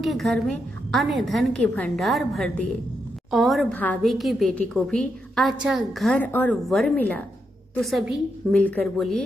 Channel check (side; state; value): both; normal; correlation 0.82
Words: घर में अन्न धन के भंडार भर दिए और भाभी की बेटी को भी अच्छा घर और वर मिला। तो सभी मिलकर बोलिए,